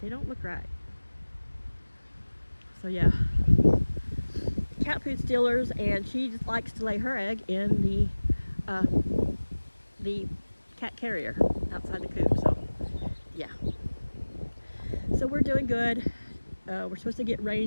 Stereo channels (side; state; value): both; inverted; correlation -1.00